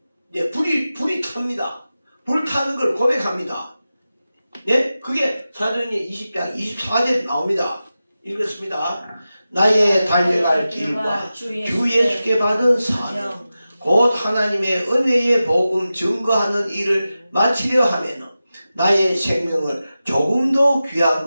불이 탑니다. 불타는 걸 고백합니다. 네? 그게 사도행전 20장 24절에 나옵니다. 읽었습니다. 나의 달려갈 길과 주 예수께 받은 사명 곧 하나님의 은혜의 복음 증거하는 일을 마치려 하면은 나의 생명을 조금 더 귀한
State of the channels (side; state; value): both; inverted; correlation -0.94